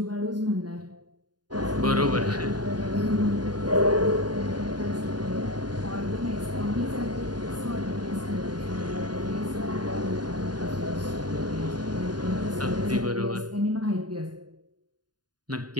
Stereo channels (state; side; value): late; left; 0.70 ms